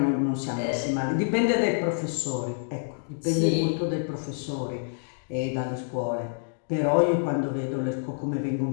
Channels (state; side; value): silent; right; digital silence